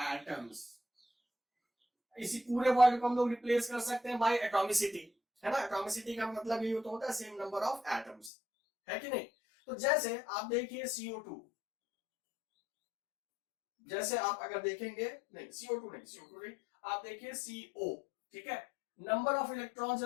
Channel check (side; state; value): right; drops out; at 8.3 s